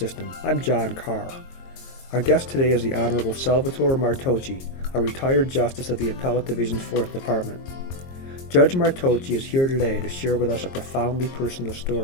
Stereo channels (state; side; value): late; right; 22 ms